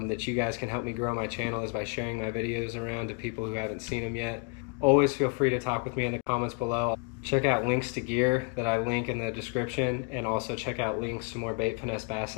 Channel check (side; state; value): right; quieter; 31.8 dB